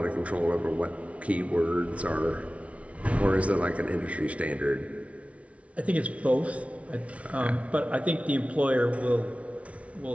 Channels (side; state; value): left; late; 0.064 ms